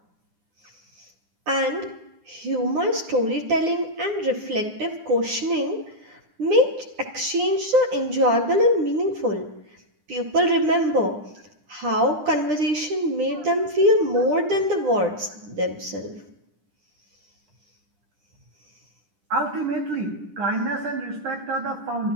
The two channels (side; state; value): left; late; 9.9 ms